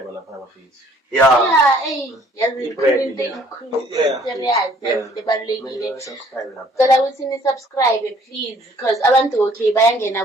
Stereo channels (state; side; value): normal; both; correlation 0.59